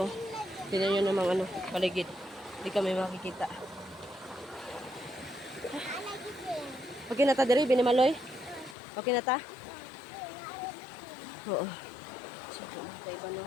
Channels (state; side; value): drops out; right; at 8.8 s